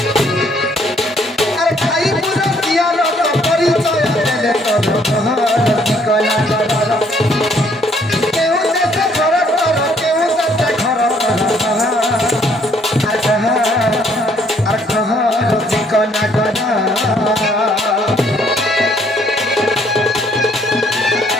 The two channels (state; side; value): normal; both; correlation 0.65